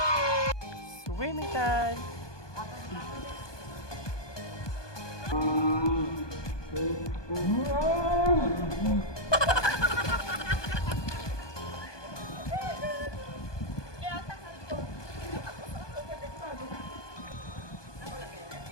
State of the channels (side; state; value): right; late; 1.2 ms